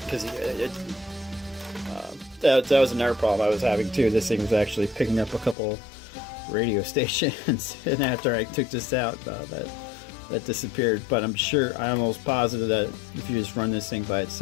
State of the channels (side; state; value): right; drops out; at 5.6 s